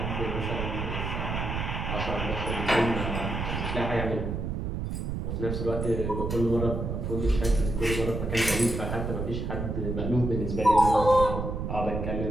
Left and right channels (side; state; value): right; noise; rumble, 3 dB below the sound